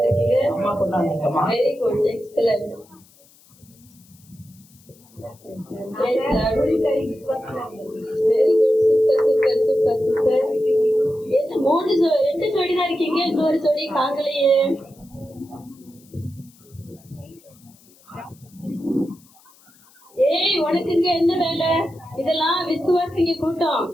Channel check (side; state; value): left; noise; hiss, 28 dB below the sound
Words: Very good, excellent. Very good, super super super super. என்ன 2 ஜோடி தான் இருக்கீங்க, இன்னொரு ஜோடி காங்கலையே. ஏய் உனக்கு இங்க என்ன வேலை? இதெல்லாம் விசுவாசிங்க கூட்டம்.